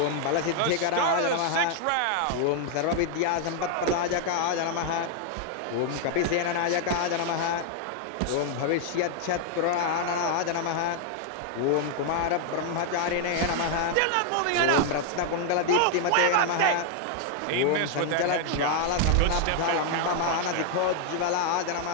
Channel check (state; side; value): different; both; correlation 0.00